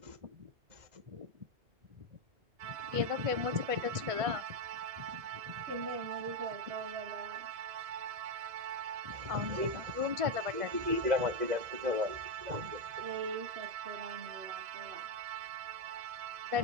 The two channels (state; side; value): late; left; 1.6 ms